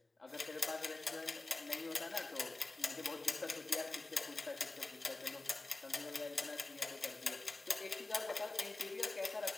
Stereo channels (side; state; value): right; quieter; 3.1 dB